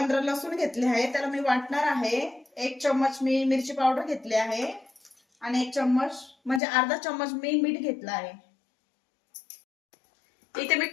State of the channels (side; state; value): right; drops out; at 6.6 s